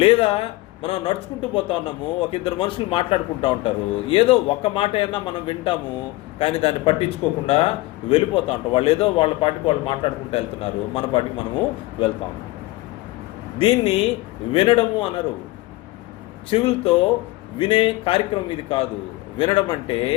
లేదా మనం నడుచుకుంటూ పోతా ఉన్నాము, ఒక ఇద్దరు మనుషులు మాట్లాడుకుంటూ ఉంటారు, ఏదో ఒక్క మాట అయినా మనం వింటాము, కానీ దాన్ని పట్టించుకోకుండా వెళ్ళిపోతూ ఉంటాం. వాళ్ళు ఏదో వాళ్ళ పాటికి వాళ్ళు మాట్లాడుకుంటూ వెళ్తున్నారు, మన పాటికి మనము వెళ్తాం. దీన్ని వినడము అనరు. చెవులతో వినే కార్యక్రమం ఇది కాదు. వినడం అంటే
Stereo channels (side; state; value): right; quieter; 19.7 dB